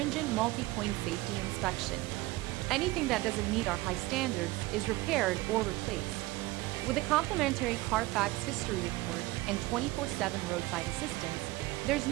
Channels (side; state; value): left; quieter; 19.5 dB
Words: multi-point safety inspection. Anything that doesn't meet our high standards is repaired or replaced. With a complimentary Carfax history report and 24/7 roadside assistance, there's